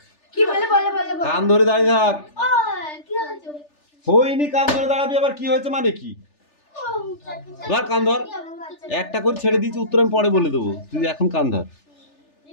কান ধরে দাঁড়িয়ে থাক। হয়নি, কান ধরে দাঁড়াবি। আবার কি হয়েছে মানে কি? ধর কান ধর। একটা করে ছেড়ে দিয়েছি, উত্তর আমি পরে বলে দেবো, তুই এখন কান ধর।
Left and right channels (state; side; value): late; right; 3.4 ms